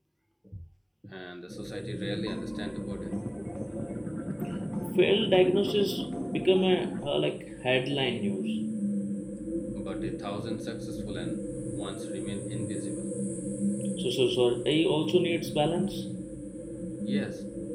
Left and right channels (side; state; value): both; identical; correlation 1.00